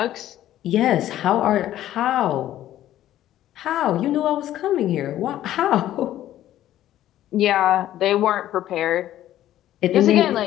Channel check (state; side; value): quieter; right; 13.0 dB